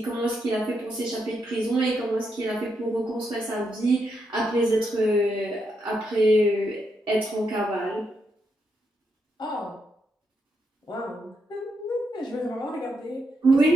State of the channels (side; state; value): both; normal; correlation 0.81